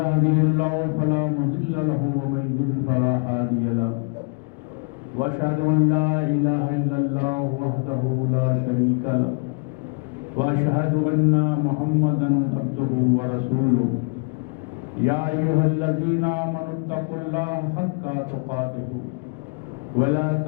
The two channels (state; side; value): quieter; right; 37.6 dB